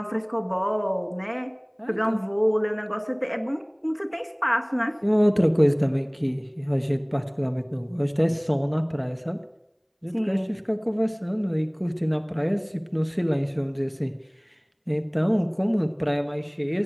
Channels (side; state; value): both; identical; correlation 1.00